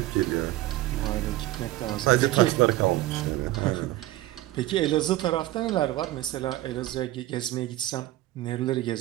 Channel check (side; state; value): left; quieter; 16.5 dB